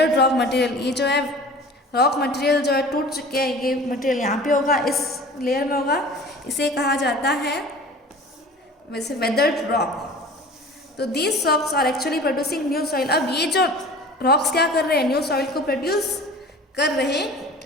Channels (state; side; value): normal; both; correlation 0.42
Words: रॉक मटेरियल। ये जो है रॉक मटेरियल जो है टूट चुके हैं, ये मटेरियल यहाँ पे होगा, इस लेयर में होगा, इसे कहा जाता है वैसे वेदर्ड रॉक। तो these rocks are actually producing new soil. अब ये जो रॉक्स क्या कर रहे हैं, न्यू सॉइल को प्रोड्यूस कर रहे